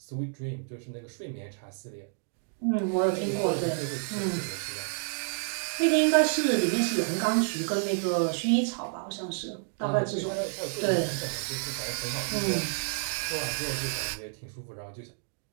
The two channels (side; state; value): left; silent; digital silence